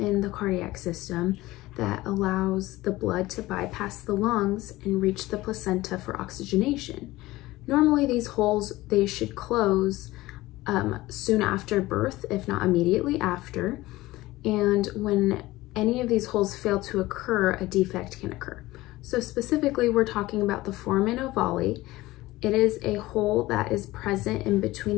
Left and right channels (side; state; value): right; quieter; 18.3 dB